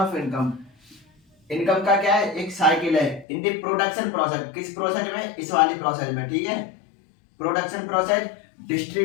income. Income का क्या है, एक साइकिल है इन दी प्रोडक्शन प्रोसेस। किस प्रोसेस में, इस वाली प्रोसेस में, ठीक है। Production process,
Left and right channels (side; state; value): right; drops out; at 3.2 s